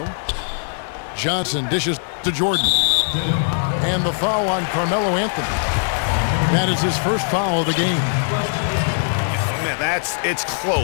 Johnson dishes to Jordan. And the foul on Carmelo Anthony. That is his first foul of the game. Man, it's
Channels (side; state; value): right; silent; 59 dB below the other